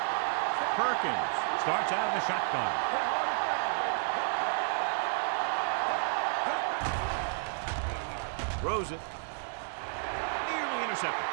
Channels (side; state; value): left; silent; digital silence